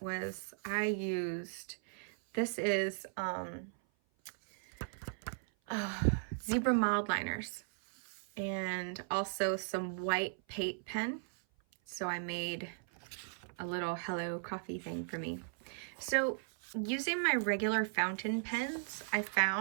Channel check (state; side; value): silent; left; 53 dB below the other